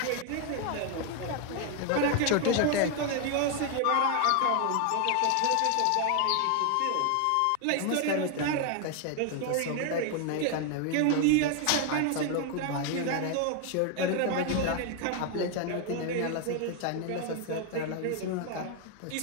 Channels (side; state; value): both; different; correlation 0.01